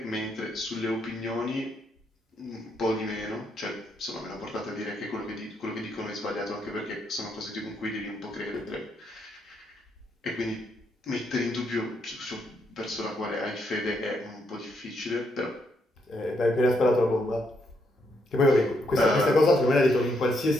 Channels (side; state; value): both; normal; correlation 0.76